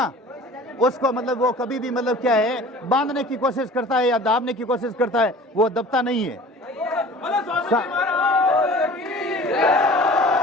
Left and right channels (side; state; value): both; normal; correlation 0.44